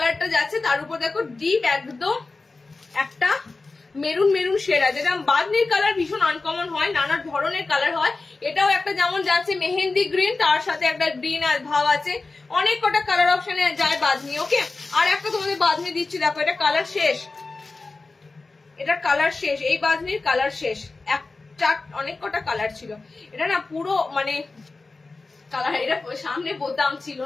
যাচ্ছে, তার উপর দেখো ডিপ একদম একটা মেরুন মেরুন শেড আছে। যেটা বাঁধনির কালার ভীষণ আনকমন হয়, নানা ধরনের কালার হয়। এটাও একটা যেমন যাচ্ছে মেহেন্দি গ্রিন, তার সাথে একটা গ্রিন ভাব আছে, অনেক কটা কালার অপশনে যায় বাঁধনি। ওকে, আর একটা তোমাদের বাঁধনি দিচ্ছি, দেখো এটা কালার শেষ, এটা কালার শেষ, এই বাঁধনির কালার শেষ। একটা অনেক কটা কালার ছিল, এটা না পুরো মানে কালার, এটা সামনে বোতাম ছিল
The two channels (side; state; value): right; quieter; 3.7 dB